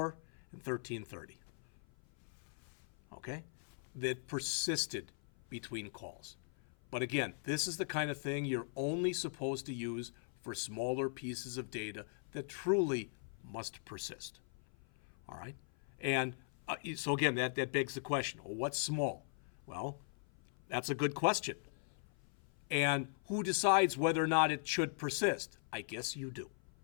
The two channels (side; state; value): right; silent; 51 dB below the other